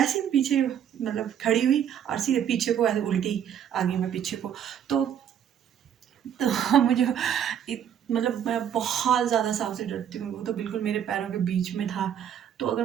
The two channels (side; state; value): left; quieter; 9.3 dB